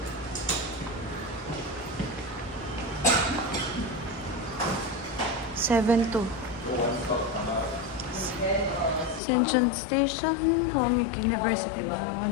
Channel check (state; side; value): drops out; right; at 9.2 s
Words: 7-2. Ascension Station, Hongik University